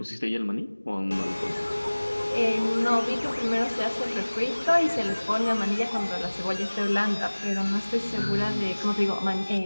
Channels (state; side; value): inverted; both; correlation -1.00